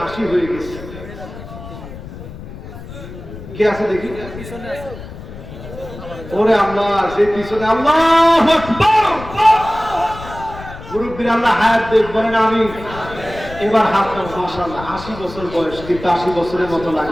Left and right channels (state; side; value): noise; left; rumble, 13 dB below the sound